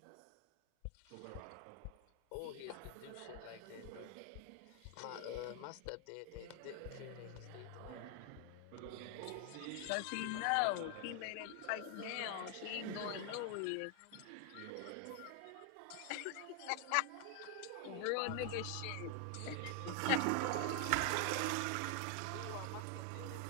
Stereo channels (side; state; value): both; different; correlation 0.00